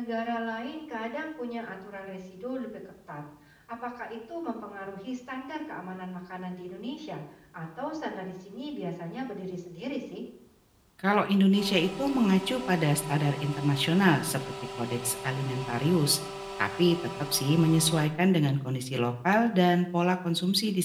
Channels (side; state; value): both; identical; correlation 1.00